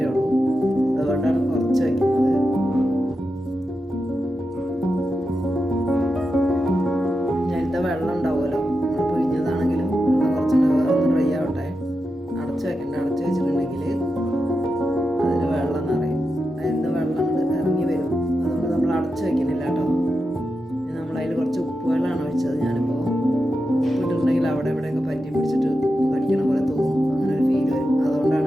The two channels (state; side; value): normal; both; correlation 0.89